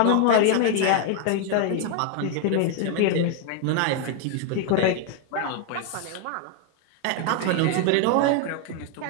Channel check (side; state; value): both; different; correlation 0.00